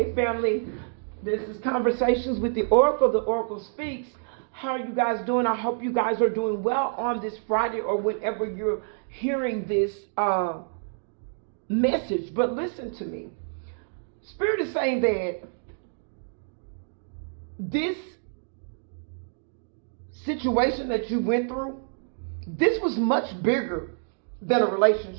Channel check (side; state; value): left; silent; digital silence